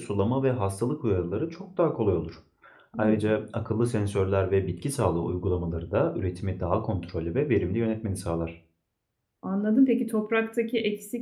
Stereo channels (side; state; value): both; identical; correlation 1.00